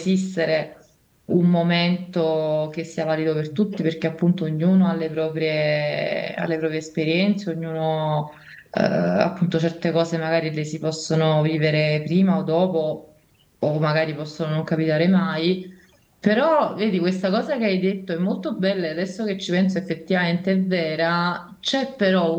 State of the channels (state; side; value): identical; both; correlation 1.00